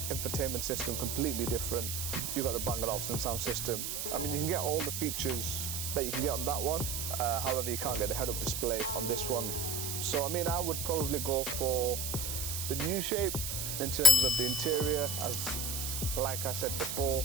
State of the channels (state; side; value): noise; right; hiss, 3 dB below the sound